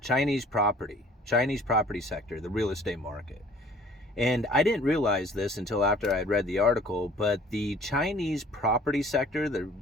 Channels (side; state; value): both; normal; correlation 0.52